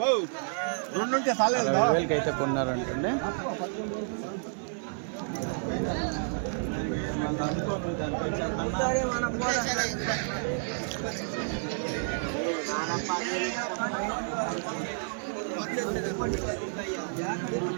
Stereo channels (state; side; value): silent; left; 58 dB below the other